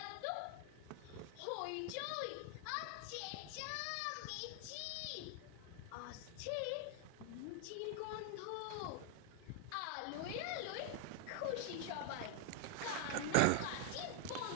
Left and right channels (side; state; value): both; different; correlation 0.00